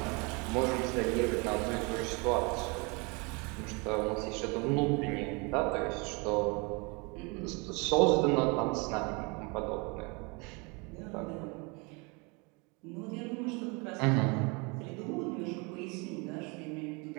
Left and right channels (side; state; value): left; quieter; 29.9 dB